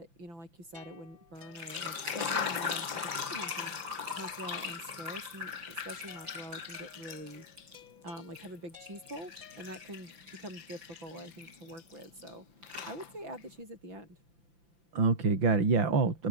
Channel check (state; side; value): late; left; 5.9 ms